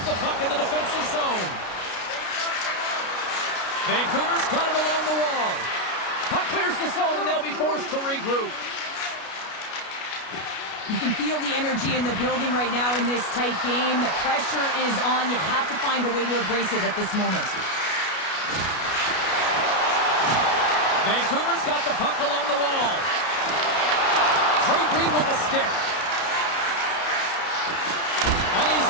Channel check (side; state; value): right; late; 33 ms